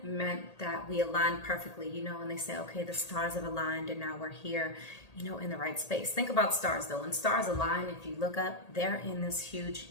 meant that we aligned perfectly, and they say, okay, the stars have aligned and now we're here, in the right space. Think about stars though. When stars align, if you look up, they're in this huge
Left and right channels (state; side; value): late; right; 1.8 ms